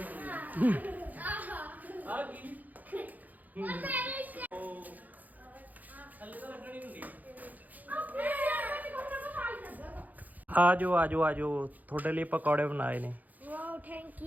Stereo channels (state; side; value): late; left; 0.081 ms